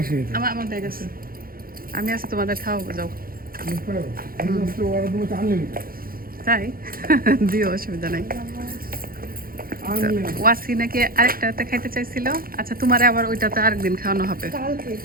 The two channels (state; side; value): late; left; 0.42 ms